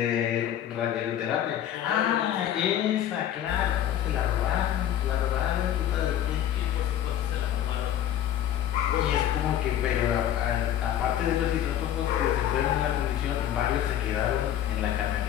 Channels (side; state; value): right; quieter; 11.0 dB